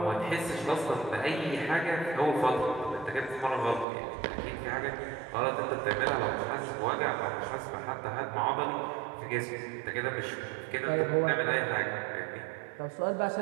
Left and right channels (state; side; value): drops out; left; at 3.9 s